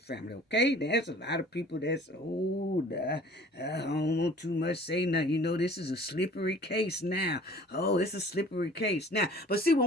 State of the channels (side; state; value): both; normal; correlation 0.49